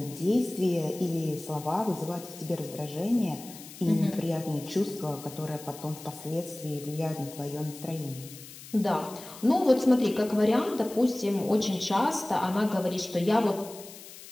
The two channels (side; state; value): left; noise; hiss, 16 dB below the sound